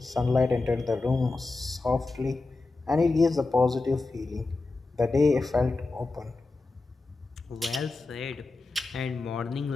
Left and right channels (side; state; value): right; quieter; 3.4 dB